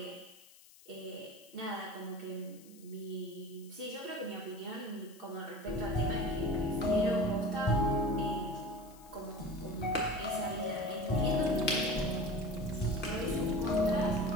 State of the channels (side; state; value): left; noise; hiss, 23 dB below the sound